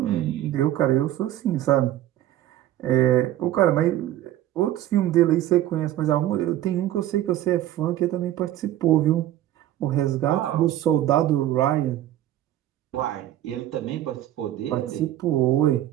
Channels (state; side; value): quieter; left; 13.2 dB